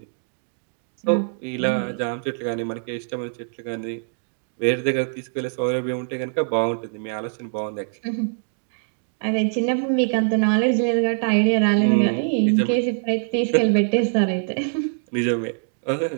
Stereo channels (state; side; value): silent; left; digital silence